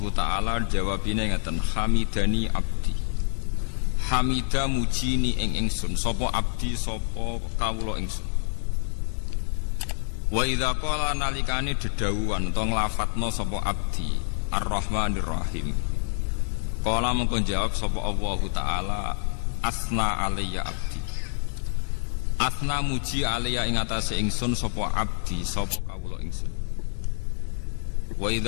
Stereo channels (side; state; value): right; silent; digital silence